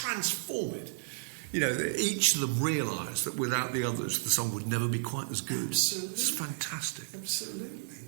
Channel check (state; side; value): silent; left; digital silence